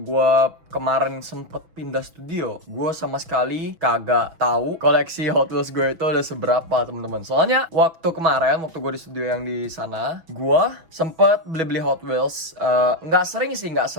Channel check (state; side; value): late; left; 6.0 ms